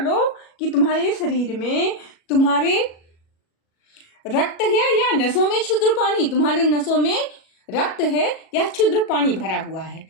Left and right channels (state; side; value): late; right; 37 ms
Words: कि तुम्हारे शरीर में तुम्हारे रक्त है या नसों में क्षुद्र पानी, तुम्हारे नसों में रक्त है या क्षुद्र पानी भरा हुआ है।